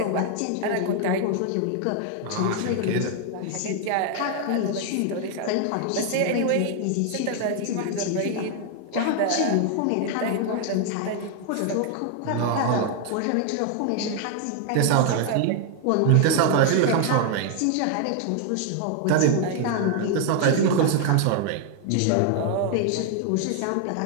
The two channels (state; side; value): different; both; correlation 0.00